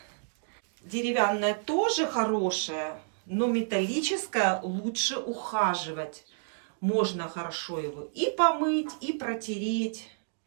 Деревянное тоже хорошее, но металлическое лучше ухаживать. Можно хорошо его и помыть, и протереть.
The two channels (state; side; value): silent; left; digital silence